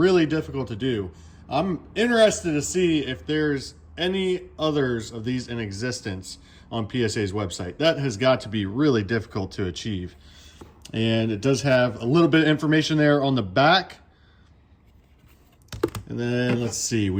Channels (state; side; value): identical; both; correlation 1.00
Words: difficult to do. I'm interested to see if there's any others of these in existence on PSA's website. That has got to be really difficult to achieve. And it does have a little bit of information there on the back. And then let's see,